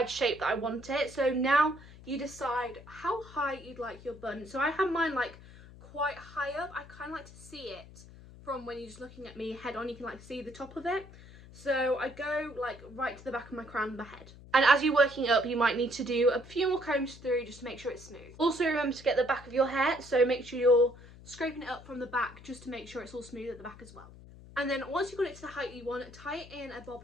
shape that I want it. So now you decide how high you'd like your bun. So I have mine like quite high up. I kind of like to see it from when you're just looking at me head on. You can like see the top of it. So I go like right to the back of my crown of my head. And as you're working up, you might need to do a few more combs through just to make sure it's smooth. Also remember to get the back of your hair. So make sure you're scraping it up from the back just to make sure it's all smooth at the back as well. And then once you've got it to the height you want, tie it in a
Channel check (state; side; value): noise; left; hum, 19 dB below the sound